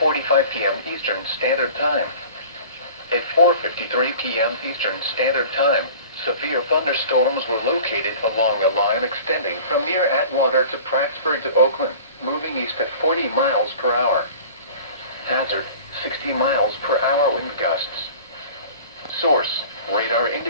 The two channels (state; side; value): inverted; both; correlation -0.43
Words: p.m. Eastern Standard Time. At 4:53 p.m. Eastern Standard Time, severe thunderstorms were located along a line extending from near Atwater to Prattsburg to Oakland, moving east at 40 miles per hour. Hazard, 60 miles per hour wind gusts. Source, radar